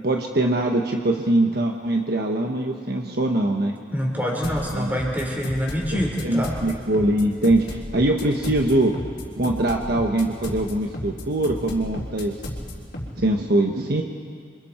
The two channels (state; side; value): normal; both; correlation 0.62